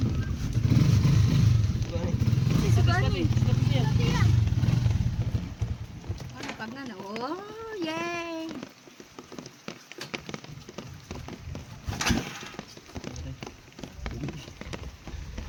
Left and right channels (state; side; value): identical; both; correlation 1.00